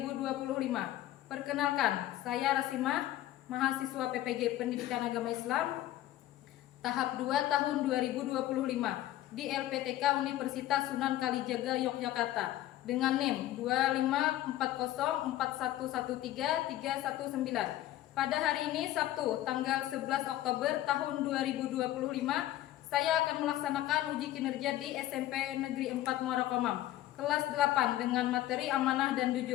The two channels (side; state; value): right; quieter; 14.3 dB